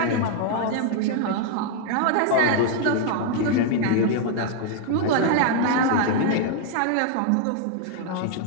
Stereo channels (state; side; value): different; both; correlation 0.00